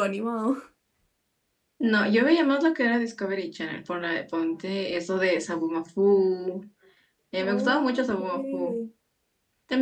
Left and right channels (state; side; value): identical; both; correlation 1.00